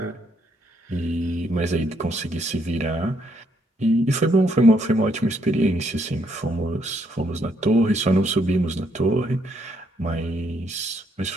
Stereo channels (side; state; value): both; normal; correlation 0.72